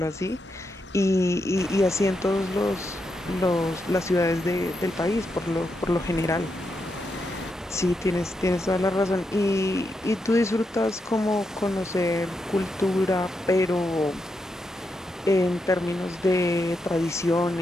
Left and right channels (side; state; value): both; normal; correlation 0.84